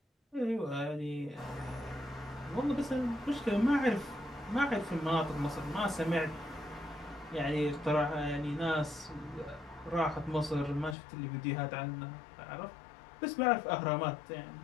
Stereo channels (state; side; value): drops out; right; at 11.0 s